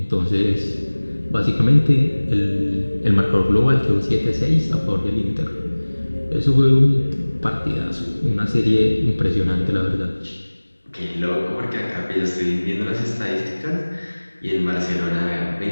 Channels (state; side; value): inverted; both; correlation -1.00